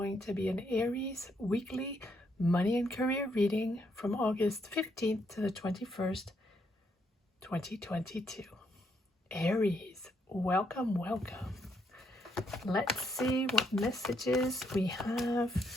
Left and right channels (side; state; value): both; normal; correlation 0.74